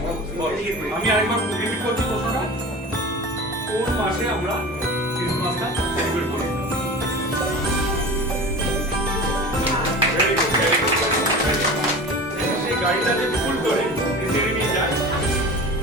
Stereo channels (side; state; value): both; normal; correlation 0.34